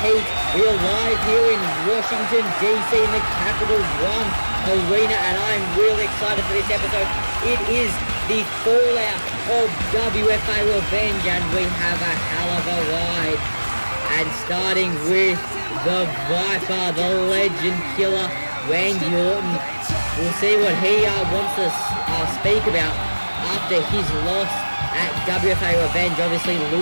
Heat. We are live here in Washington DC in the Capital One Arena, and I'm really excited for this episode. It is the fallout of WFA Revenge, and we have a hell of a ride. And starting with the Viper, the legend killer, Randy Orton. We'll see what he wants to speak about after his loss at WFA Revenge, obviously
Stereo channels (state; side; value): inverted; both; correlation -1.00